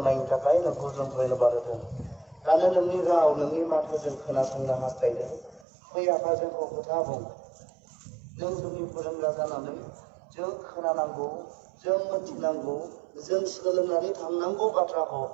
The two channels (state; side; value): drops out; left; at 5.7 s